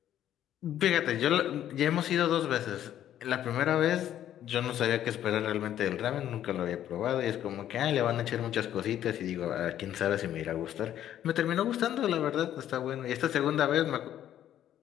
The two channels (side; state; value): right; quieter; 11.3 dB